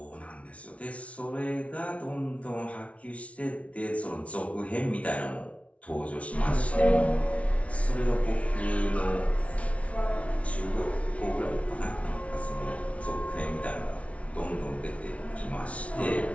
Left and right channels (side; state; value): right; late; 0.064 ms